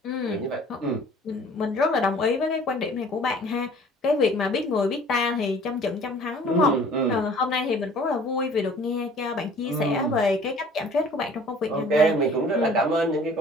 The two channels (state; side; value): normal; both; correlation 0.50